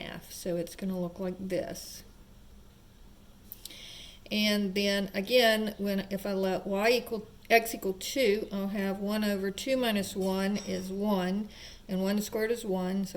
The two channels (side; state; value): both; identical; correlation 1.00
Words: so it's going to look like this. And then again, if I let x equal 2, I'll have 1 over 2 minus 1 is 1, and 1 squared is 1,